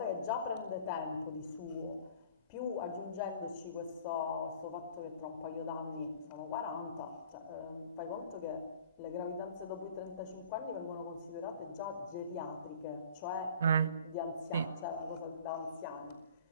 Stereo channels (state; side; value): inverted; both; correlation -0.48